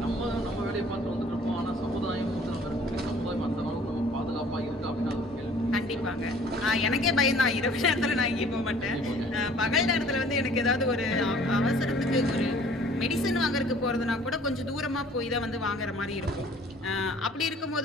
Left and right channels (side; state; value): both; normal; correlation 0.53